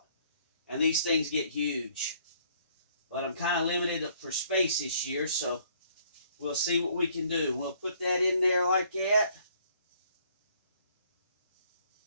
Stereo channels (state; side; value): inverted; both; correlation -0.63